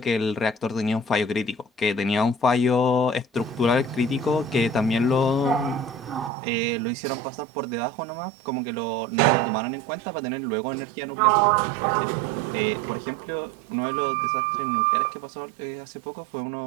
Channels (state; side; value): drops out; left; at 6.3 s